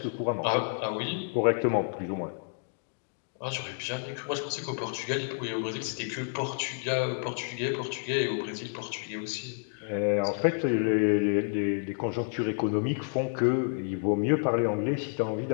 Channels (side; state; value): right; silent; 58 dB below the other